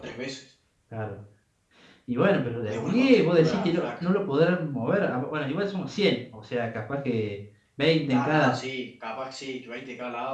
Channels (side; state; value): both; identical; correlation 1.00